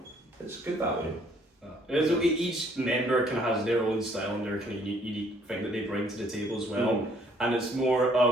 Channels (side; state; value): both; normal; correlation 0.63